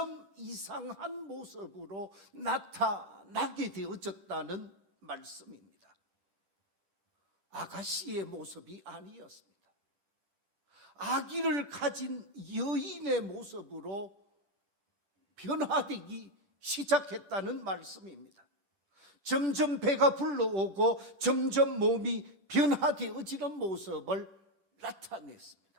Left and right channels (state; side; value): late; left; 10 ms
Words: 이상한 모습으로 나타나게 되어졌다는 말씀입니다. 아가씨의 모습이 아니었습니다. 아기를 가진 여인의 모습으로 변화되기 시작했다는 말씀입니다. 점점 배가 불러오고 점점 몸이 변화되어지는 모습을 나타냈습니다.